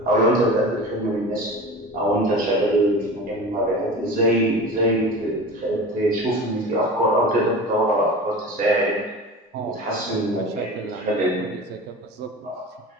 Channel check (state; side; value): normal; both; correlation 0.33